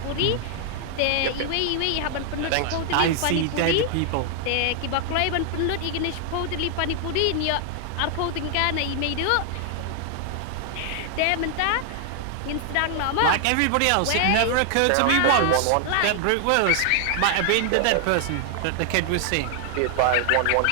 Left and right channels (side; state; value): both; different; correlation 0.00